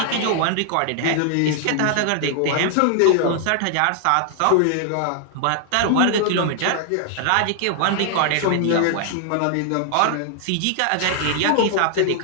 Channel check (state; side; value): different; both; correlation 0.00